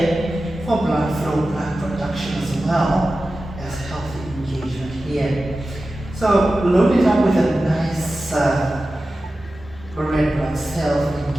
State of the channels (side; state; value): both; normal; correlation 0.94